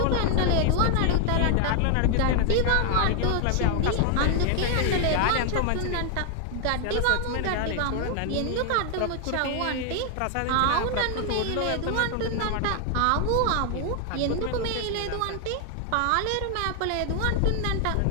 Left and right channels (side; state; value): both; different; correlation 0.00